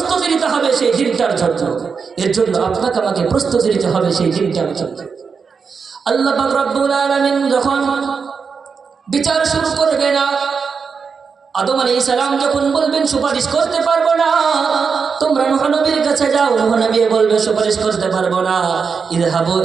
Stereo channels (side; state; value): left; quieter; 5.6 dB